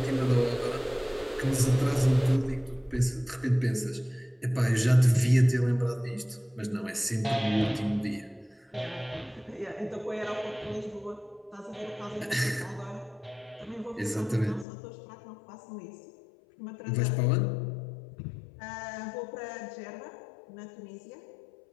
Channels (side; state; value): right; drops out; at 14.7 s